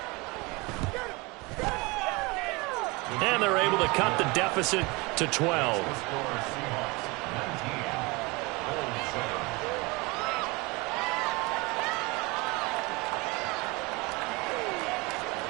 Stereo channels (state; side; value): quieter; left; 25.4 dB